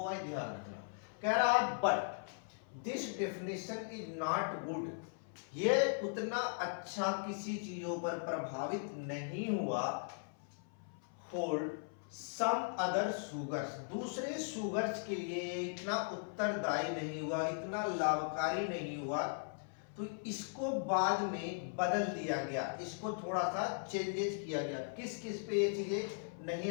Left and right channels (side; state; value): right; silent; 52 dB below the other